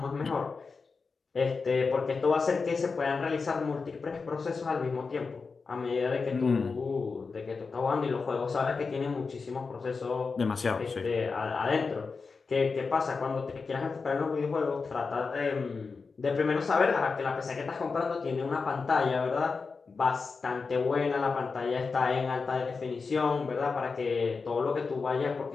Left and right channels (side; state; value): right; quieter; 4.7 dB